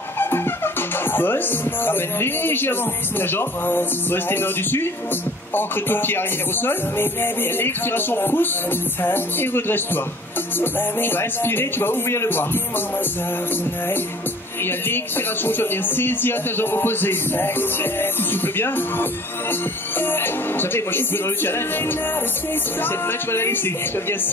Pose. Ramène légèrement la jambe. Pose tes mains au-dessus. Ancre ton pied arrière au sol. Et à l'expiration, pousse et redresse-toi. Tu vas inspirer, tu vas ouvrir le bras. Et à l'expiration, tu vas venir saisir ta jambe opposée. Tu souffles bien. Vous savez, moi je suis dans le challenge. Cette main, tu vas la laisser. Tu vas venir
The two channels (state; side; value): normal; both; correlation 0.48